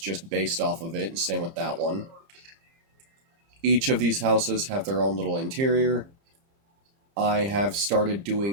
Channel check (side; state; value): left; late; 30 ms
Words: based off of it, and same with that one. Each of these houses have their own little interior. I have started